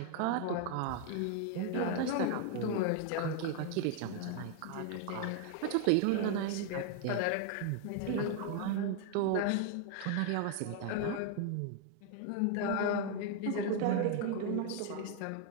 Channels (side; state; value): both; different; correlation 0.00